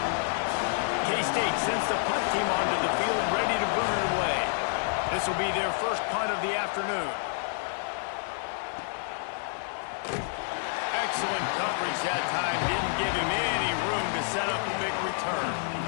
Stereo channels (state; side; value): silent; right; digital silence